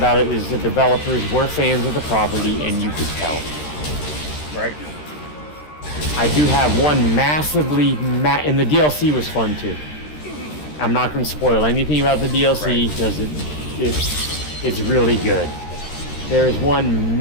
it is the developers were fans of the property, and you could tell. Right. I do have one and the DLC was fun too. I'm not going to spoil anything about the DLC because it's really good. There is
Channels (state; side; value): late; right; 13 ms